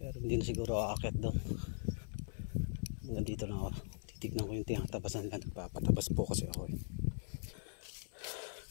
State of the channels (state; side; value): silent; right; 51 dB below the other